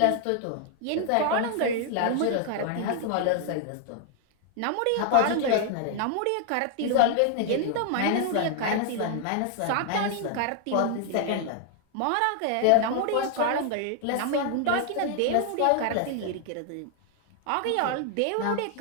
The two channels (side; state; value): both; different; correlation 0.00